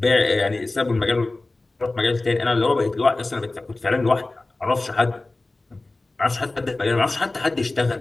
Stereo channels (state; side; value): quieter; right; 3.1 dB